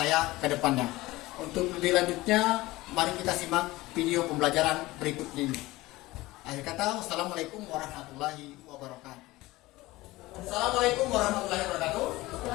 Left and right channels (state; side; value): quieter; right; 19.2 dB